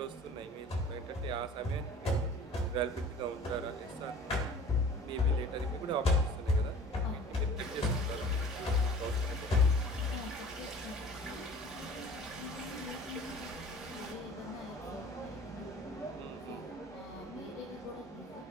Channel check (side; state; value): both; normal; correlation 0.45